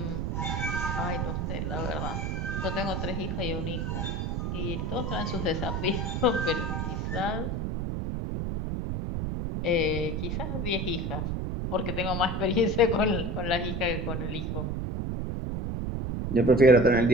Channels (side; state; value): right; noise; rumble, 1 dB below the sound